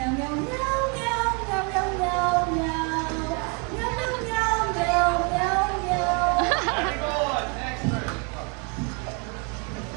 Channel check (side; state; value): left; quieter; 32.2 dB